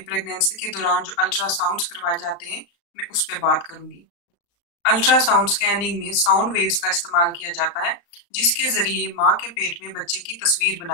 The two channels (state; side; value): late; right; 35 ms